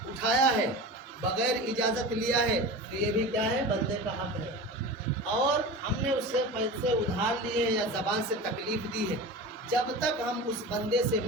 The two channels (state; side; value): normal; both; correlation 0.31